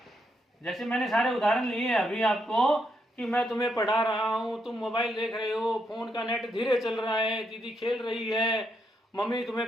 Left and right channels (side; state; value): both; normal; correlation 0.79